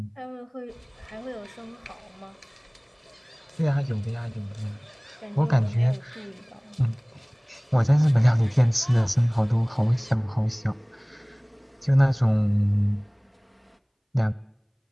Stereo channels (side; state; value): both; identical; correlation 1.00